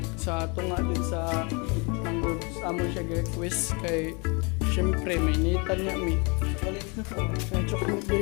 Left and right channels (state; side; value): quieter; right; 31.3 dB